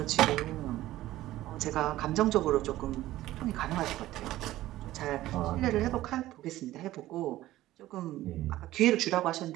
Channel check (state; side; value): quieter; left; 15.4 dB